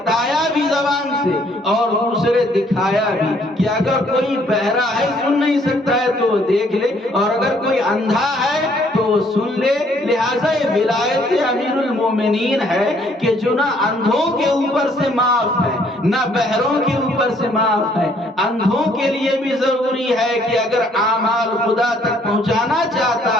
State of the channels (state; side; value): normal; both; correlation 0.64